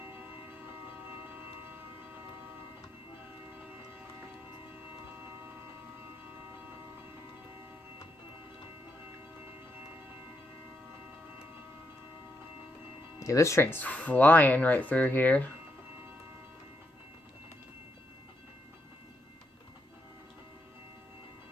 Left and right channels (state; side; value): normal; both; correlation 0.80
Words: Yeah, this train's flying right through here.